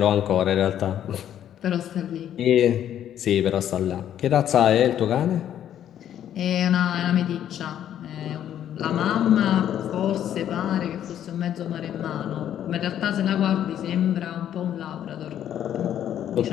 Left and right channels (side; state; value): right; quieter; 10.6 dB